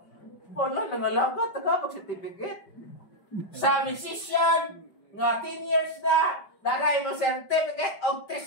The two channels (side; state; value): right; late; 5.3 ms